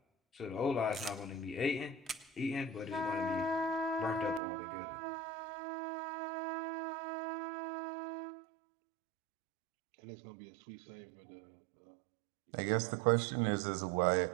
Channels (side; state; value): left; drops out; at 4.4 s